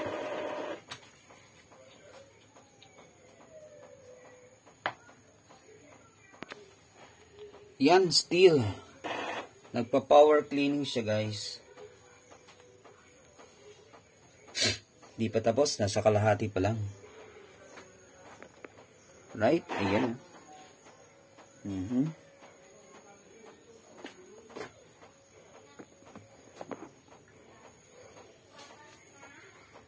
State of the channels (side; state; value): both; identical; correlation 1.00